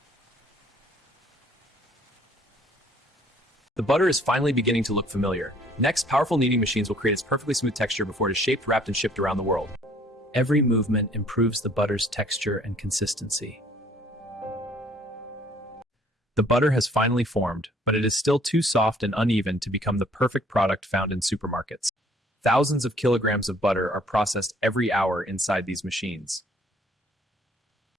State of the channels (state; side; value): normal; both; correlation 0.59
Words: The butter is finally beginning to look familiar. Next, powerful kneading machines will create its perfectly smooth texture before it is shaped, wrapped, and shipped around the world. Every movement improves the butter's texture and consistency. The butter has finally formed, but it is still too soft and uneven to become the perfect product found in supermarkets. Thousands of kilograms of butter are processed every hour inside these machines.